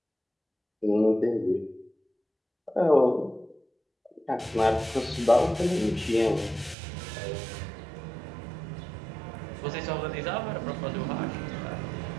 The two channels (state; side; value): drops out; left; at 6.8 s